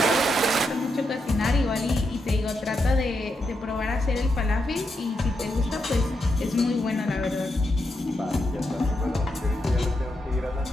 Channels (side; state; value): both; normal; correlation 0.84